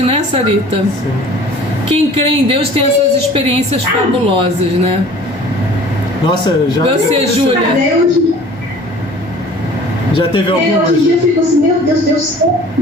né, Sarita? Sim. Quem crê em Deus tem essas experiências fabulosas, né? Nossa, Você, Júlia? Já teve algumas? Hoje em dia eu fico assim, meu Deus,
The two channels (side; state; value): both; normal; correlation 0.47